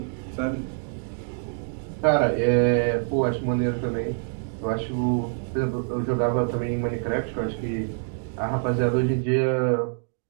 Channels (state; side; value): silent; left; digital silence